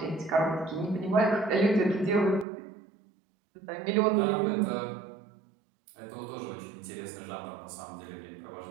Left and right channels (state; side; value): drops out; left; at 2.5 s